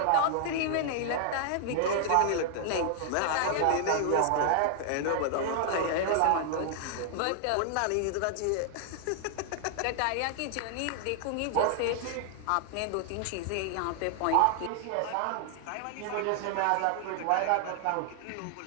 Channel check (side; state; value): both; different; correlation -0.01